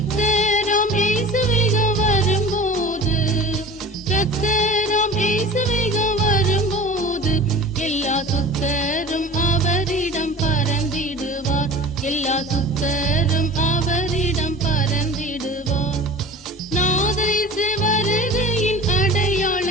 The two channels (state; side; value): normal; both; correlation 0.38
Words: இயேசுவிக வரும்போது, கர்த்தராம் இயேசுவிக வரும்போது, எல்லா சுத்தரும் அவரிடம் பறந்திடுவார், எல்லா சுத்தரும் அவரிடம் பறந்திடுவார். நாதரிசு வருகையின்